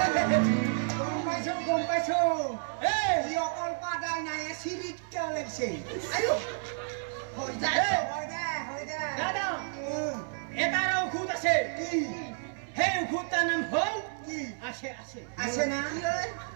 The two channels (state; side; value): silent; left; 57 dB below the other